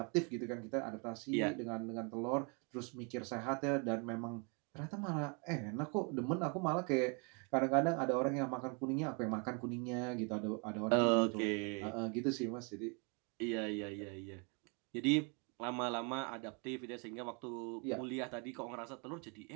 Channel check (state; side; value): quieter; left; 34.7 dB